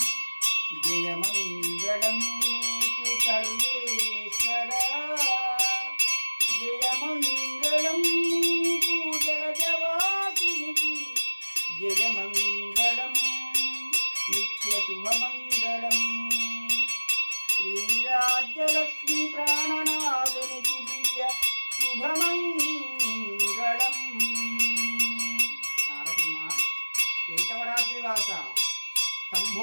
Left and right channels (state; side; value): inverted; both; correlation -1.00